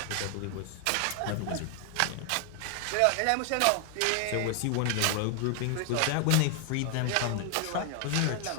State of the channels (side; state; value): both; different; correlation 0.00